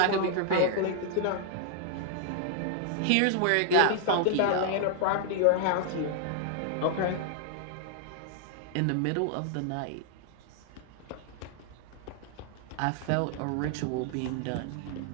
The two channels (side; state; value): both; different; correlation 0.00